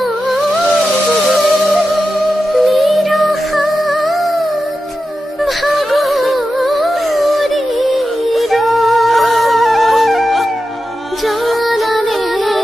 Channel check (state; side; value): normal; both; correlation 0.91